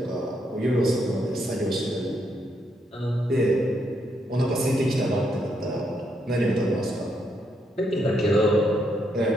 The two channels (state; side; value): normal; both; correlation 0.77